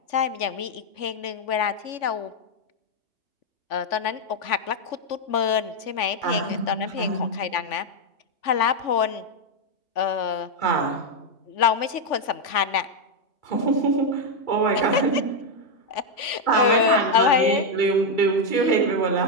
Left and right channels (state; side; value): late; right; 3.5 ms